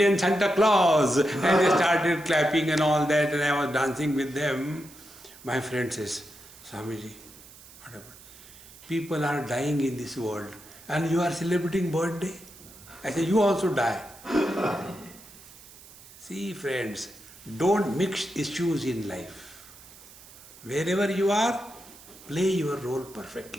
Santa Claus. And they started clapping and all that, and I was dancing with them. My friend says, Swamiji, what about? People are dying in this world and you are celebrating birthday? I said, you also die. See friends, don't mix issues in life. Wherever you are, play your role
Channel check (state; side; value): noise; right; hiss, 20 dB below the sound